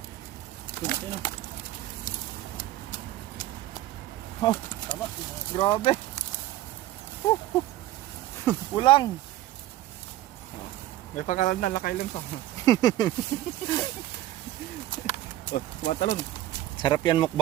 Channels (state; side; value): quieter; left; 14.8 dB